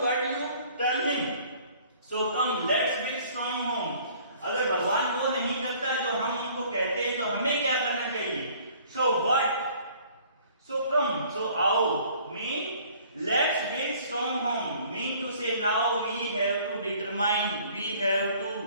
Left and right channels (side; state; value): both; inverted; correlation -0.55